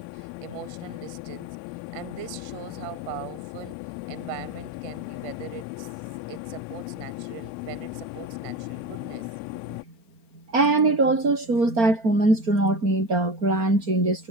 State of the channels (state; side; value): late; left; 4.4 ms